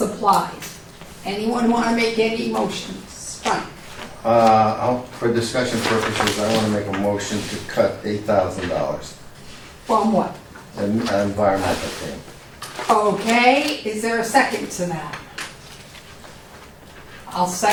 Anyone want to make any motions? Fine. For discussion purposes, I want to make a motion to cut $8,000 From what? in environmental thing. Okay, is there a second to that? I'll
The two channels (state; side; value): identical; both; correlation 1.00